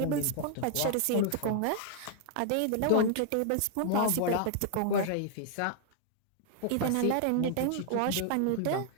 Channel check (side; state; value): both; different; correlation 0.00